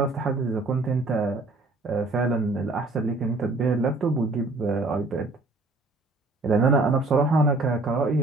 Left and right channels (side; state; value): left; quieter; 3.2 dB